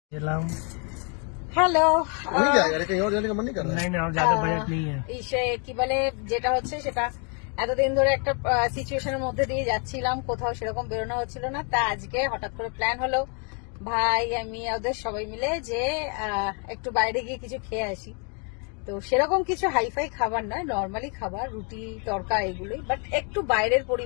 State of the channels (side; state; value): right; quieter; 37.8 dB